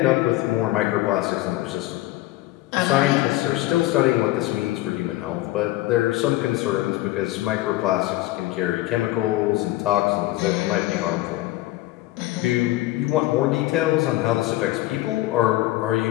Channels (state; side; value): quieter; right; 16.9 dB